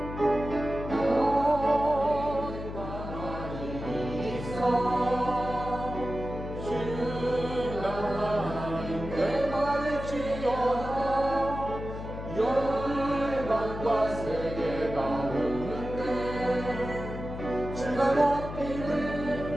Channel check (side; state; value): left; noise; hum, 8 dB below the sound